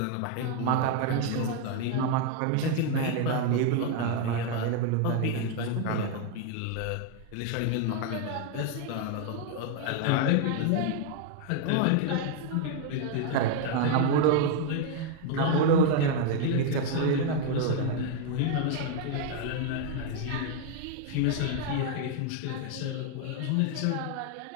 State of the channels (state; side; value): different; both; correlation 0.01